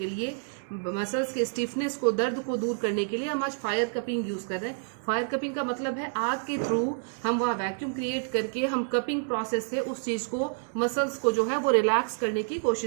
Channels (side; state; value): left; silent; 59 dB below the other